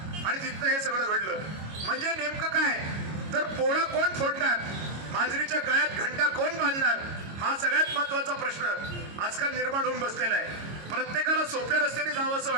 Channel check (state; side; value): late; left; 26 ms